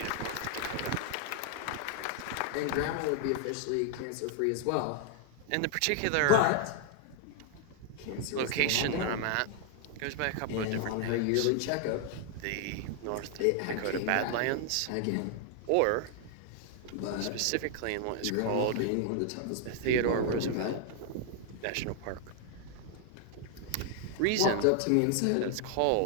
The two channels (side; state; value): both; different; correlation 0.00